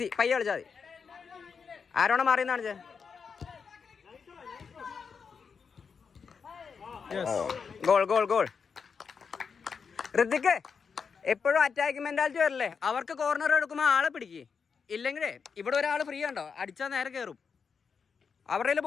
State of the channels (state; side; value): quieter; right; 5.9 dB